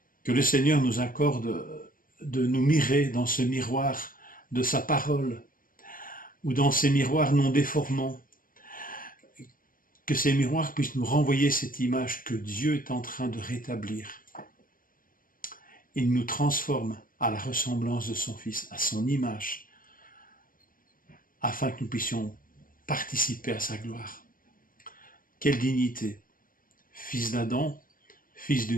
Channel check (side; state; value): right; late; 0.40 ms